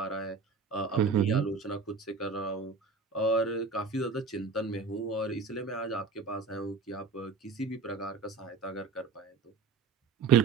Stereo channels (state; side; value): quieter; left; 4.8 dB